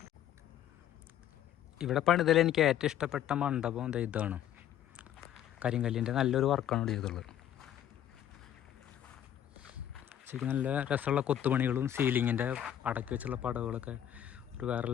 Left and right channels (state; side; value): quieter; right; 10.8 dB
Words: ഇവിടെ പണിതൽ എനിക്ക് ഏറ്റവും ഇഷ്ടപ്പെട്ട മണ്ഡപം ഇതാണ്. കരിങ്കല്ലിൻ്റെ നല്ലൊരു വർക്കാണ് ഇവിടെ ചെയ്തുള്ളത്. ശരിക്കും നല്ല രസമുള്ള കൊത്തുപണികളും സീലിങ്ങിൻ്റെ അടക്കി വെച്ചുള്ള പടവുകളൊക്കെ ഒരു വേറെ